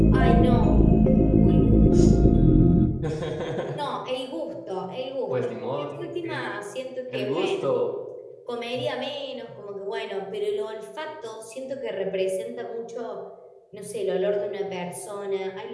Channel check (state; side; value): identical; both; correlation 1.00